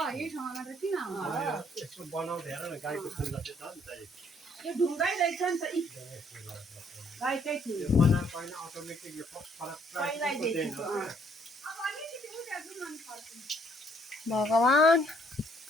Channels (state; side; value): normal; both; correlation 0.65